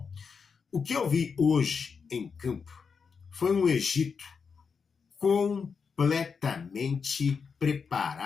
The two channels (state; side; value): quieter; right; 5.7 dB